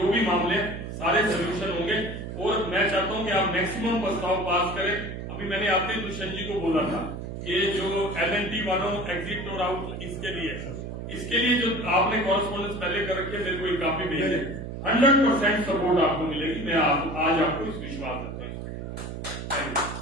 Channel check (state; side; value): noise; right; hum, 7 dB below the sound